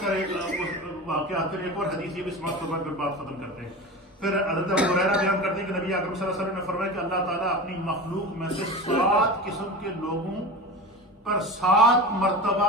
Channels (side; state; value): both; normal; correlation 0.29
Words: سارے واقعات، پھر ایک اور حدیث یہ بھی سماعت فرما کر بات ختم کرتے ہیں۔ پھر حضرت ابو ہریرہ بیان کرتے ہیں کہ نبی اکرم صلی اللہ علیہ وسلم نے فرمایا کہ اللہ تعالیٰ اپنی مخلوق میں سے 7 قسم کے لوگوں پر 7 مرتبہ